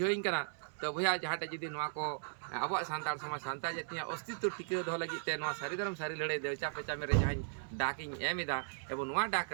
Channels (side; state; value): left; silent; 53 dB below the other